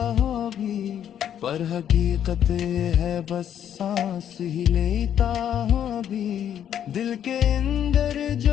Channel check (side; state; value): right; quieter; 9.7 dB